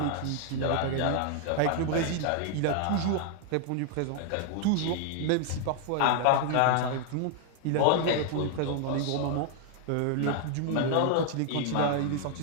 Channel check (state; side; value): different; both; correlation 0.00